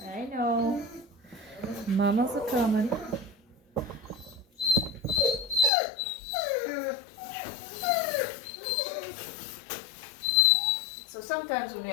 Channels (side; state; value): right; drops out; at 5.7 s